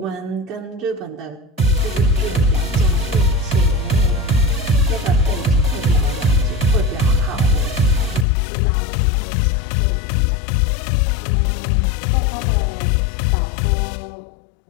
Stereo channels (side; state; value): right; drops out; at 8.2 s